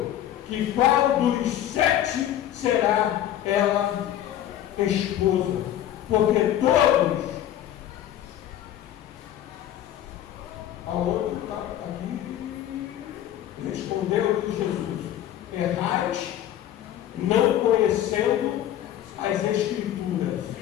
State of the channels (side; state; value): right; quieter; 11.8 dB